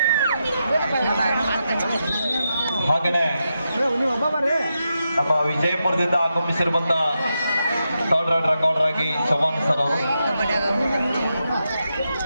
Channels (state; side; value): inverted; both; correlation -0.86